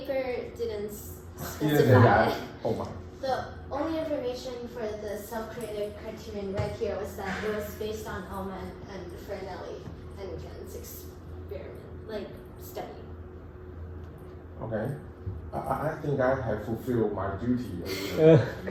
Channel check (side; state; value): both; identical; correlation 1.00